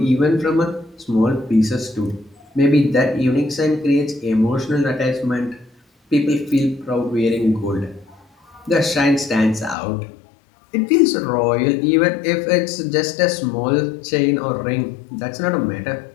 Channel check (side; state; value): right; drops out; at 9.8 s